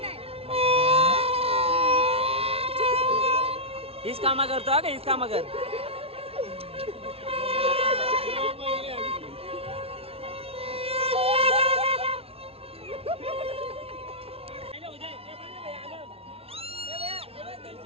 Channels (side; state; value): left; late; 0.28 ms